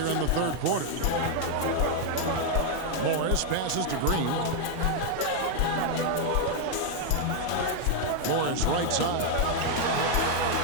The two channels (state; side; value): different; both; correlation 0.00